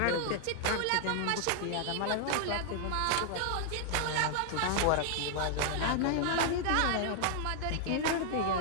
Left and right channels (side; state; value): both; different; correlation 0.00